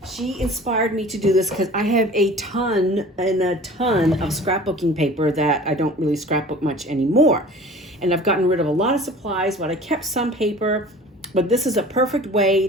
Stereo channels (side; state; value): both; normal; correlation 0.43